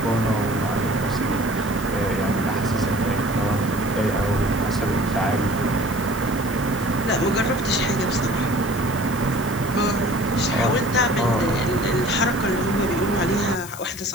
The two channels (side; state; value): left; noise; hiss, 14 dB below the sound